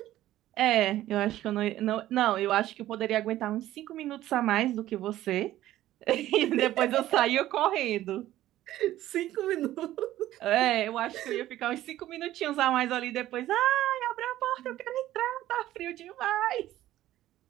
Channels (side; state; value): left; quieter; 14.2 dB